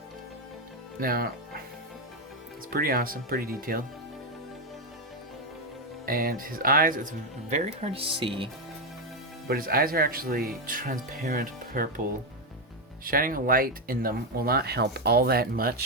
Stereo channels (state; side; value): normal; both; correlation 0.06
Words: Now, it's pretty awesome, pretty detailed. And his eyes, it's very hard to see, but his eyes are actually transparent purple. Shining a light in them will not help all that